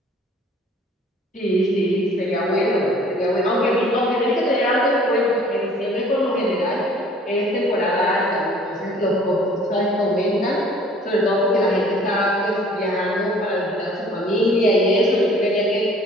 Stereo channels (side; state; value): both; normal; correlation 0.53